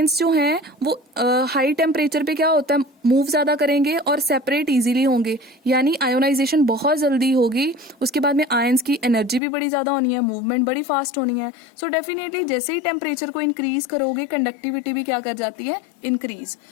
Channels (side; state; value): right; drops out; at 9.4 s